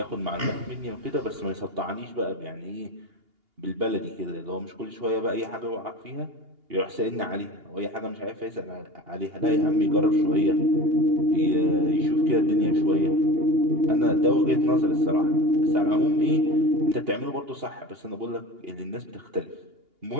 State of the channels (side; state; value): left; late; 2.8 ms